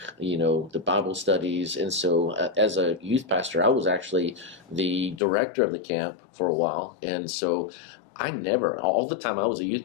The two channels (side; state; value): right; drops out; at 5.2 s